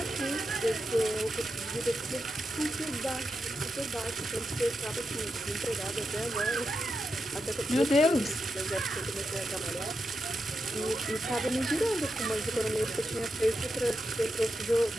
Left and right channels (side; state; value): both; normal; correlation 0.87